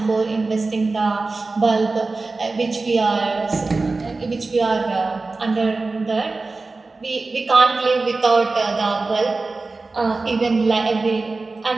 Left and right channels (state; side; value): quieter; left; 3.6 dB